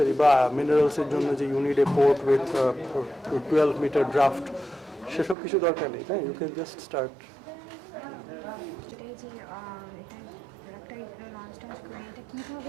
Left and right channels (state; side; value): drops out; left; at 5.4 s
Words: বা মিনারেলসের জন্য যে unit a port with 12 metre draft, সেসব কিছু দরকার নেই, হ্যাঁ, you can just start.